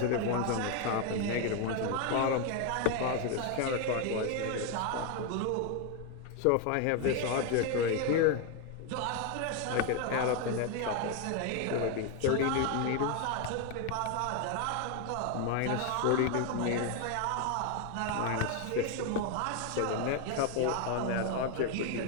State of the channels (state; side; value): different; both; correlation 0.01